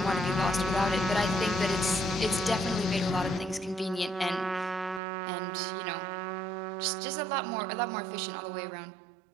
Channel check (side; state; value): left; drops out; at 5.0 s